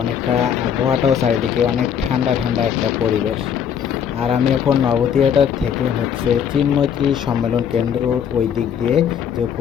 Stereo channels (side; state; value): right; quieter; 8.2 dB